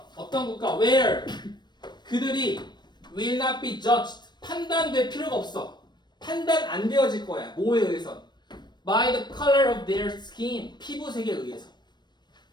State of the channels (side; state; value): right; late; 0.21 ms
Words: 어떤 국가? Where? 그들이 will not be judged. 판단될 필요가 없어. 판단 안 되어질 거야. 뭐에 의해서? By the color of their skin. 피부색에 의해서.